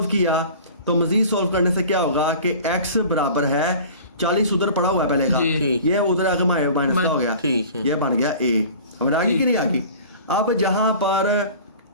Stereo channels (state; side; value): inverted; both; correlation -0.42